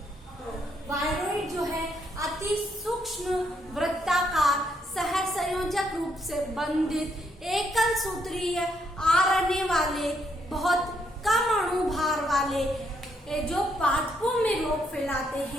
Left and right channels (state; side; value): normal; both; correlation 0.74